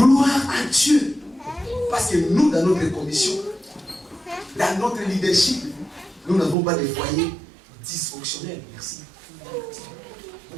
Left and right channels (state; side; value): drops out; left; at 6.6 s